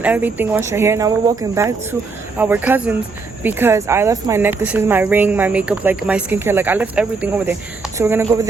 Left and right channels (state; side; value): quieter; left; 4.3 dB